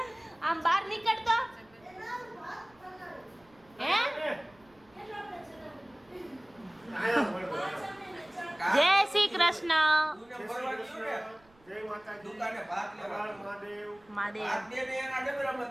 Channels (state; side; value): noise; right; rumble, 30 dB below the sound